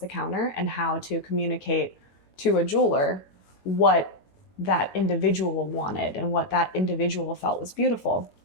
counter and how to communicate to a jeweler what that individual wanted and what that individual felt was beautiful.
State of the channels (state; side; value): late; right; 21 ms